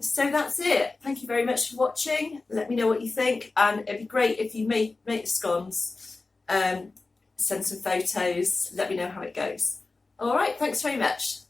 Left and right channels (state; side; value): quieter; right; 3.6 dB